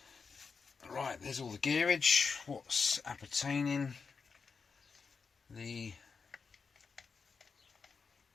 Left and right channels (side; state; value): right; quieter; 5.3 dB